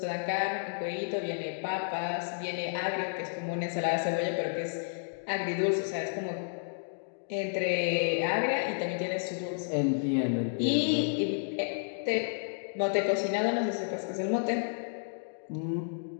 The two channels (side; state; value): right; silent; digital silence